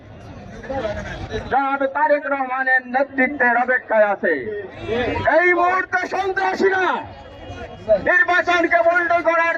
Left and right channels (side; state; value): both; identical; correlation 1.00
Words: জনাব তারেক রহমানের নেতৃত্বের অপেক্ষায় আছে। এই মুহূর্তে সন্ত্রাসীরা নির্বাচনকে বন্ধ করার